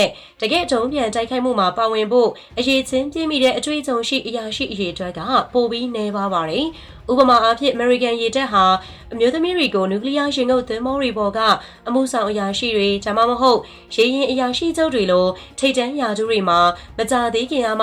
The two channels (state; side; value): identical; both; correlation 1.00